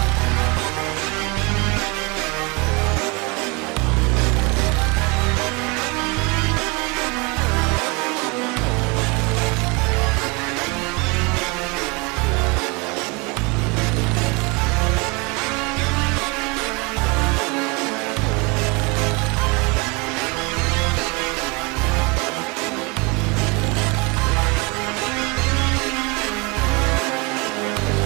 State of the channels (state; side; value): quieter; left; 28.5 dB